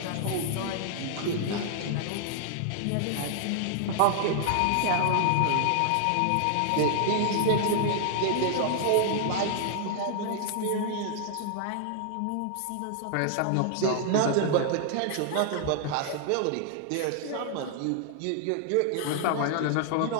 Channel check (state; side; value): different; both; correlation -0.01